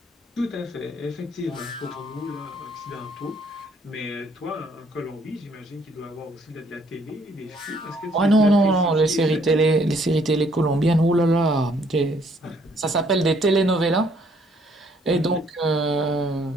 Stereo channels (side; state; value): both; normal; correlation 0.65